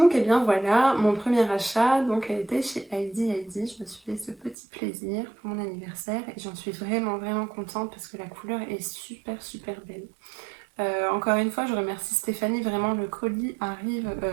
et bien voilà, mon premier achat donc a été chez Heidi Heidi. Je me suis fait ce petit plaisir pour mon anniversaire et j'en suis vraiment contente parce que la couleur est super belle. Encore une fois, je remercie Stéphanie, vraiment le colis arrive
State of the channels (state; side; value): drops out; left; at 4.5 s